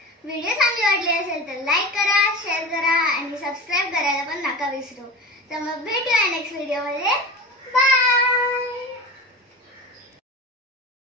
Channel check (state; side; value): normal; both; correlation 0.31